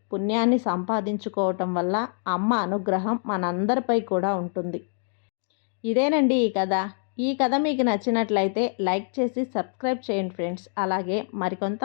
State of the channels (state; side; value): silent; right; 61 dB below the other